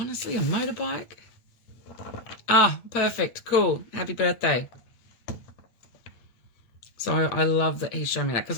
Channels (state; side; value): late; right; 8.5 ms